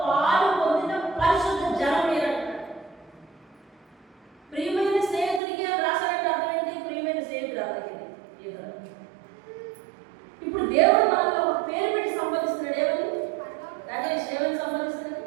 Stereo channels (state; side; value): drops out; left; at 5.4 s